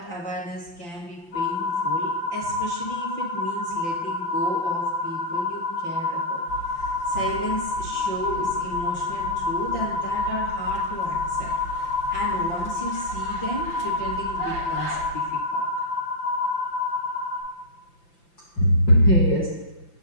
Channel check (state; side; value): late; right; 5.9 ms